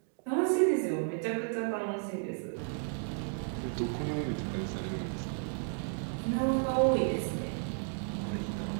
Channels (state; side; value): silent; left; 56 dB below the other